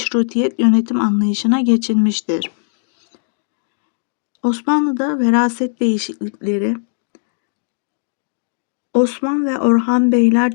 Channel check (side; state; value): right; silent; digital silence